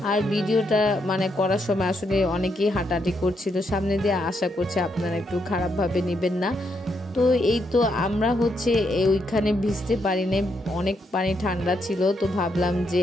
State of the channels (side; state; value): both; normal; correlation 0.78